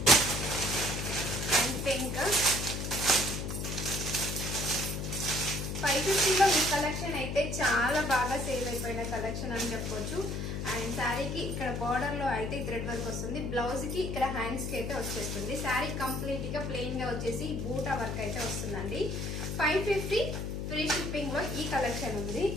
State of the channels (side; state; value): left; noise; hum, 3 dB below the sound